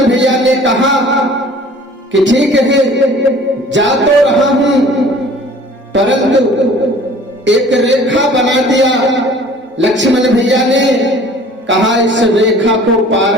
भैया ने कहा कि ठीक है, जा तो रहा हूं, परंतु एक रेखा बना दिया। लक्ष्मण भैया ने कहा, इस रेखा को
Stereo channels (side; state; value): both; normal; correlation 0.49